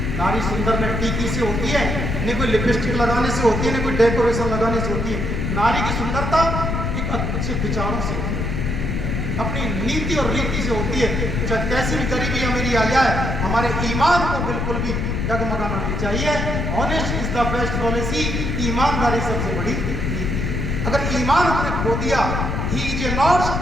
नारी सुंदर न टीकी से होती है, न कोई लिपस्टिक लगाने से होती है, न कोई डेकोरेशन लगाने से होती है। नारी की सुंदरता एक अच्छे विचारों से होती है, अपनी नीति और रीति से होती है। चाहे कैसी भी गरीबी अमीरी आ जाए, हमारे ईमान को बिल्कुल भी डगमगाना नहीं चाहिए। Honest is the best policy. ईमानदारी सबसे बड़ी नीति है। अगर ईमान हमने खो दिया, he is a not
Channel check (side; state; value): left; noise; rumble, 1 dB below the sound